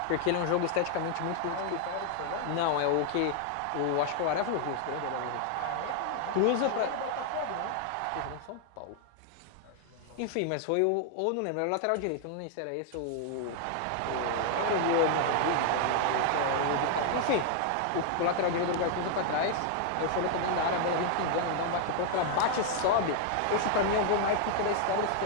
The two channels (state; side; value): different; both; correlation 0.00